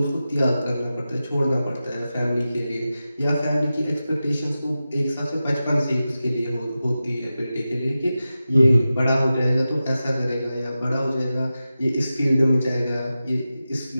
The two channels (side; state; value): both; inverted; correlation -0.93